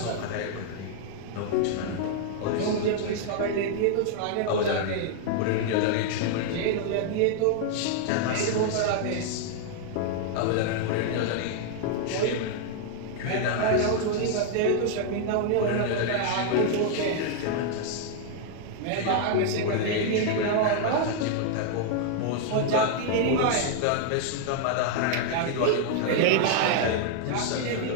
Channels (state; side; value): different; both; correlation -0.01